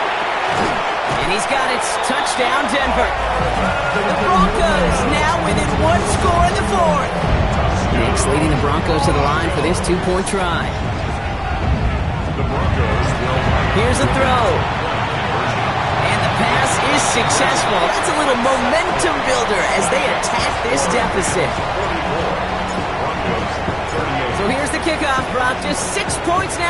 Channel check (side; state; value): both; identical; correlation 1.00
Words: And he's got it. Touchdown, Denver. The Broncos now within one score in the fourth. Nix leading the Broncos to the line for this two-point try. The Broncos will... Here's a throw. And the pass is successful. That's a little momentum builder as they attack this deficit. So here's the kickoff, Brock. Just 6 points